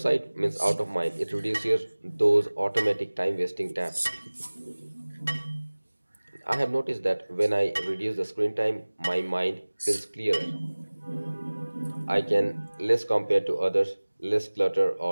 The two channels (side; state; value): both; inverted; correlation -1.00